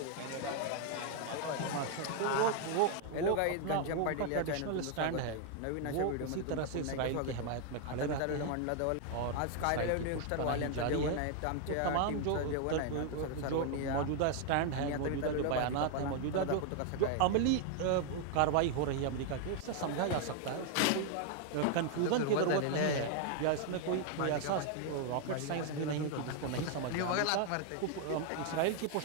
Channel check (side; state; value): both; different; correlation 0.00